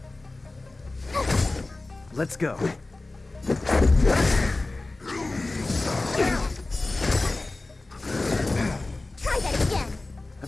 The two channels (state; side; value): quieter; right; 3.1 dB